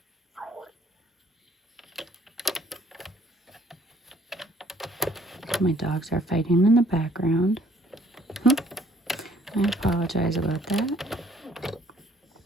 My dogs are fighting in the background. I apologize about that.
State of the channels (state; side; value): normal; both; correlation 0.61